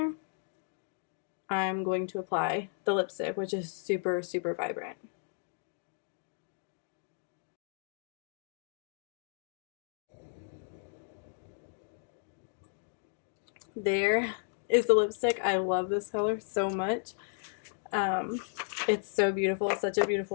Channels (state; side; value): silent; right; digital silence